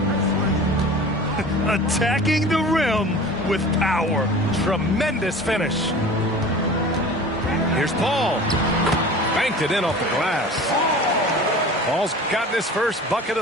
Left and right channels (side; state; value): both; normal; correlation 0.39